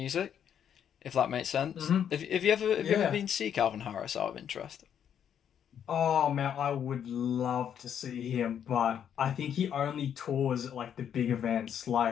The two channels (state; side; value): quieter; right; 8.9 dB